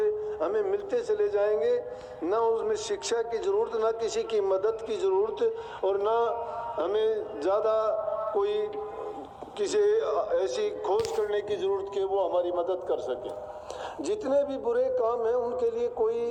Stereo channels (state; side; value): identical; both; correlation 1.00